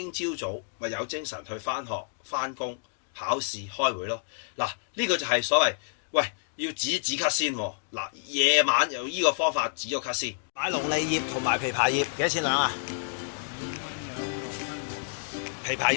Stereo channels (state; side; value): silent; right; digital silence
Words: 朝早咪有精神去返學、返工、考試、開會咯。嗱，呢個就係所謂，喂，要止咳先喎。嗱，夜晚用呢個方法止咗咳先。買龍脷葉同埋枇杷葉幾多錢兩啊？枇杷